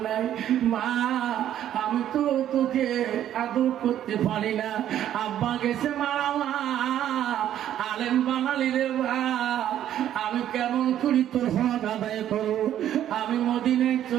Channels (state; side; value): quieter; left; 11.2 dB